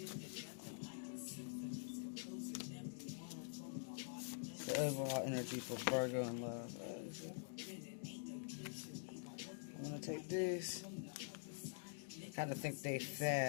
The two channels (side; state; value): right; silent; digital silence